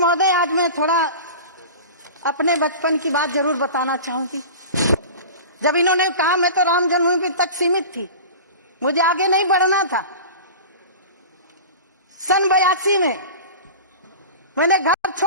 आज मैं थोड़ा अपने बचपन की बात जरूर बताना चाहूंगी। जब इन्होंने कहा मैं तो राम जन्मभूमि तक सीमित थी, मुझे आगे नहीं बढ़ना था। सन 82 में मैंने घर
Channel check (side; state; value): both; inverted; correlation -0.34